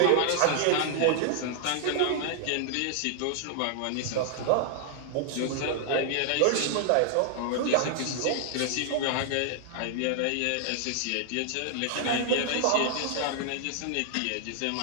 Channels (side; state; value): both; different; correlation 0.00